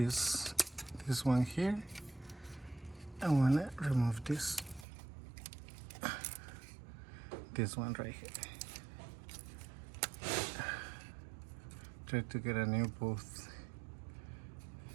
one here. I want to remove this one right here. Try to get a new both.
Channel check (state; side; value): drops out; left; at 4.9 s